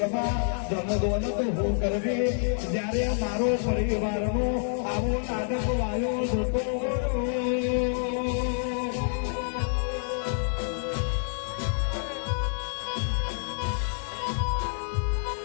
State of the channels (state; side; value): silent; right; 56 dB below the other